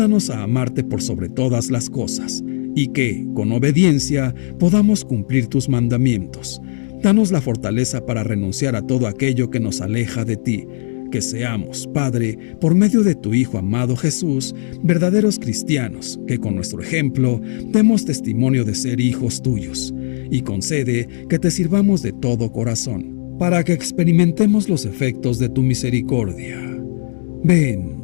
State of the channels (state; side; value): silent; right; 67 dB below the other